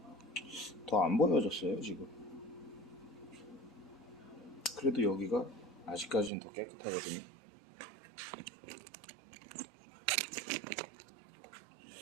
더 안 보여졌어요 지금. 그래도 여기가 아직까지는 더 깨끗하거든요.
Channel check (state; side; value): drops out; left; at 6.3 s